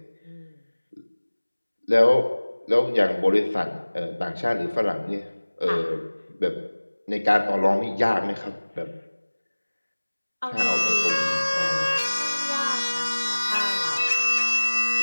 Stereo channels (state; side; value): inverted; both; correlation -1.00